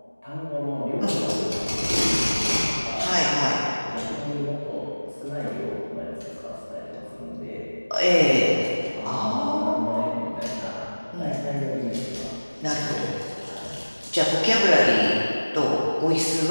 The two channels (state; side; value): inverted; both; correlation -1.00